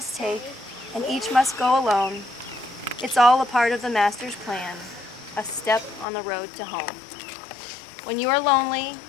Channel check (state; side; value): drops out; right; at 6.1 s